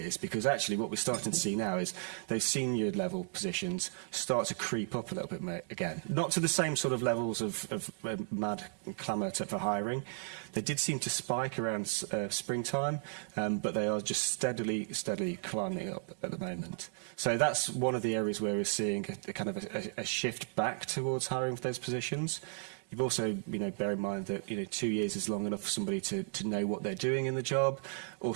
because actually what we're starting to see now is those senior level positions start to creep up a little bit again. Not to the same sort of levels of mad clamour for hiring. They did seem to spike around springtime, but they are just steadily climbing up at the moment. So that's one of the areas where we're seeing a kind of a shift back towards hiring for those positions. You've also, bear in mind that, 2 years is long enough for somebody to know what they're doing in the job,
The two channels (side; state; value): left; silent; digital silence